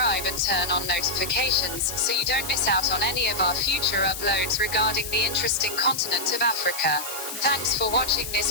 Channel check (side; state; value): left; noise; hiss, 8 dB below the sound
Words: and turn on notifications so you don't miss out on any of our future uploads regarding the interesting continent of Africa. Thanks for watching